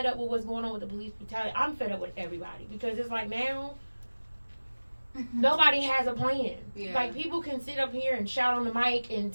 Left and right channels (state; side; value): inverted; both; correlation -1.00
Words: up with what's going on with the police brutality. I'm fed up with everybody. Because it's like now, nobody has a plan. Yeah. Like, people can sit up here and shout on the mic and